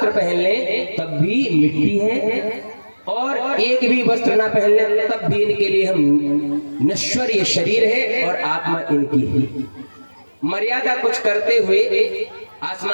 पहन लें तब भी मिट्टी है, और एक भी वस्त्र ना पहन लें तब भी इनके लिए हम नश्वर ये शरीर है और आत्मा इनकी ही। मर्यादा कुछ करते हुए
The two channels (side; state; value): both; inverted; correlation -1.00